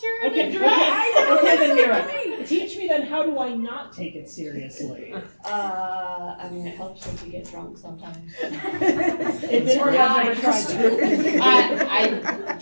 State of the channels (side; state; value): both; inverted; correlation -1.00